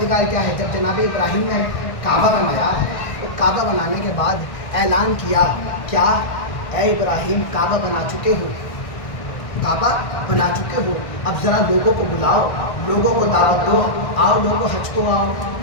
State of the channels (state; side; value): late; right; 1.6 ms